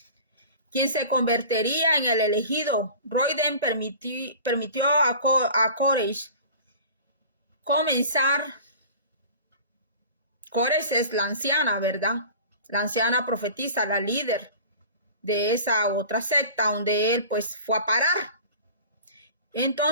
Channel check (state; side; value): inverted; both; correlation -0.40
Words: Quien se convertiría en el elegido. Royden permitió a Koresh comenzar. Koresh es la anciana, ¿verdad? La anciana profetisa, la líder. de esa otra secta donde él pues fue a parar.